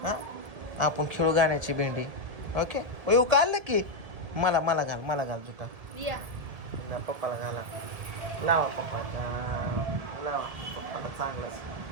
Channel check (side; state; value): left; late; 1.7 ms